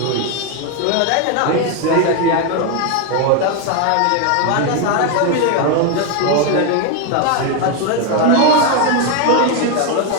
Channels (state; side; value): different; both; correlation 0.01